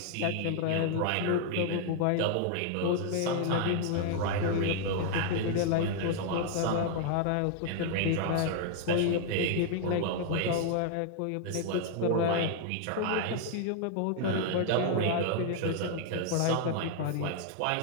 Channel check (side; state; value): both; different; correlation 0.00